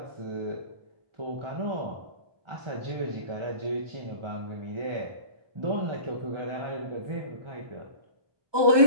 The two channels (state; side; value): late; left; 1.2 ms